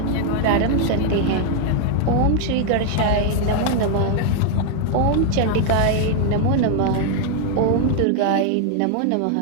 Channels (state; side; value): different; both; correlation 0.00